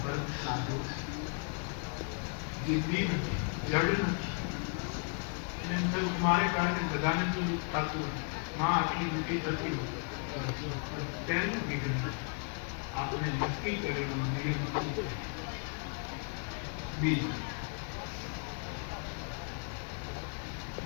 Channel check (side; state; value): right; quieter; 39.7 dB